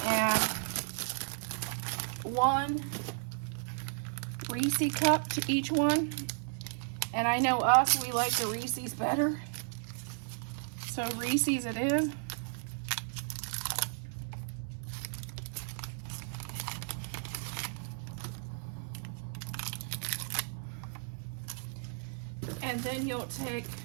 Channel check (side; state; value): left; silent; 55 dB below the other